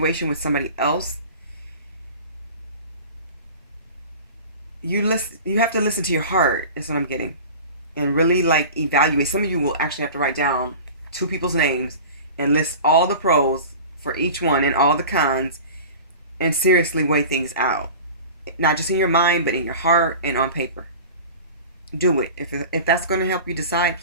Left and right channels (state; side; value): inverted; both; correlation -0.37